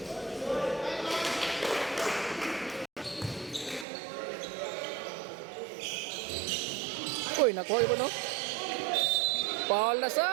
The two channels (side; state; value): left; drops out; at 3.9 s